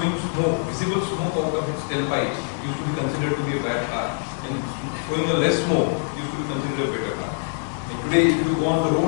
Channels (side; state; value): right; silent; digital silence